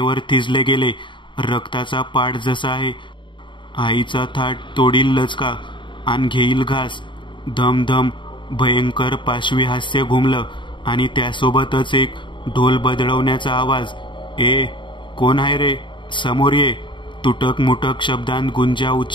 थिजले गेले. रक्ताचा पाठ जसा आहे, आईचा थाट तोडील लचका आणि घेईल घास. धमधम भयंकर पाशवी हास्य घुमलं आणि त्यासोबतच एक ढोल बदलवण्याचा आवाज. ए कोण आहे रे, समोर ये, तुटक मुटक शब्दांत गुंजा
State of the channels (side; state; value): right; late; 0.23 ms